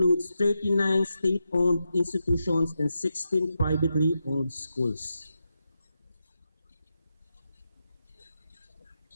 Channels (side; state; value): both; inverted; correlation -0.87